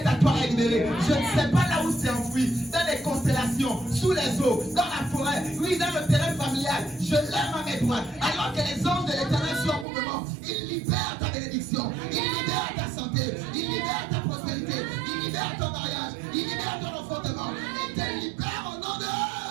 à toi est libéré. Je ne sais pas là où c'est enfoui, dans les constellations, sous les eaux, dans la forêt, oui, dans le terrain familial. Je lève ma main droite. Alors que les anges de l'Éternel sont en mouvement, ils libèrent ta bénédiction, ils libèrent ta santé, ils libèrent ta prospérité, ils libèrent ton mariage, ils libèrent ton enfantement. Ils te libèrent au nom de...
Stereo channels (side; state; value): left; drops out; at 9.9 s